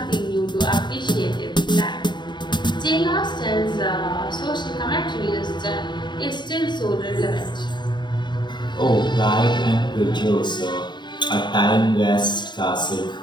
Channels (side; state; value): right; late; 0.22 ms